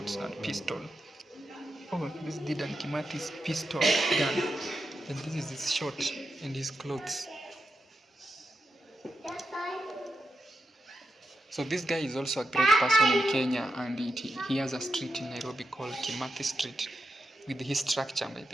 and pistol. Oh, this is Dedan Kimathi's pistol gun. And this is his short and his clothes. So this guy is also a great person in Kenya, and he has a street in Nairobi called Kimathi Street with his structure, by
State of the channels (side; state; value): both; normal; correlation 0.87